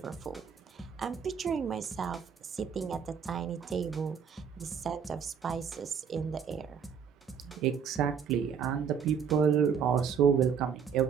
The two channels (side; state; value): left; quieter; 7.1 dB